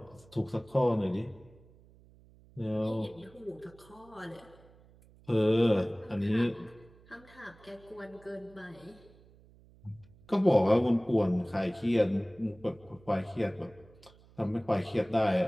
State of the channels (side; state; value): right; noise; hum, 26 dB below the sound